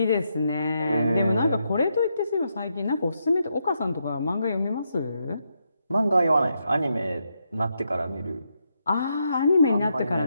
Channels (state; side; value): inverted; both; correlation -0.81